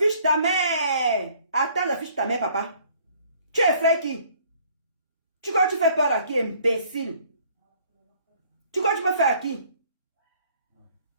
ta mère. Attends, j'affiche ta mère, papa. Tu es frère qui? Tu crois que tu fais peur à qui, imbécile? Tu crois que tu me fais à qui?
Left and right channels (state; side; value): inverted; both; correlation -0.59